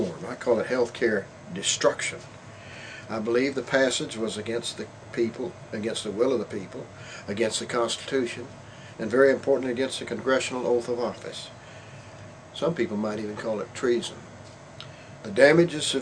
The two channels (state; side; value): identical; both; correlation 1.00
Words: I call it health care destruction. I believe the passage was against the people, against the will of the people, against the Constitution, and very importantly against the congressional oath of office. Some people might even call it treason. The damage is